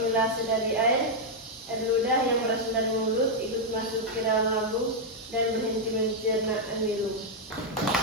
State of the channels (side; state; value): both; normal; correlation -0.02